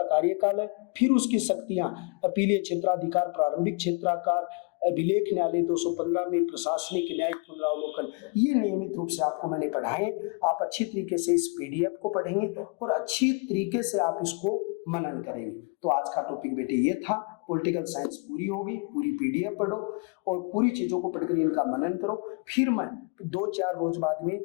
कार्यकाल है, फिर उसकी शक्तियां अपीलीय क्षेत्राधिकार, प्रारंभिक क्षेत्राधिकार, अभिलेख न्यायालय 215 में प्रशासनिक न्यायिक पुनरावलोकन, ये नियमित रूप से आपको मैंने पढ़ाए। आप अच्छी तरीके से इस पीडीएफ को पढ़ेंगे और अच्छी तरीके से आप इसको मनन करेंगे। तो आज का टॉपिक बेटे ये था, पॉलिटिकल साइंस पूरी होगी, पूरी पीडीएफ पढ़ो और पूरी चीजों को पढ़कर इनका मनन करो। फिर मैं 2-4 रोज बाद में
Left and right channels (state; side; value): quieter; right; 33.4 dB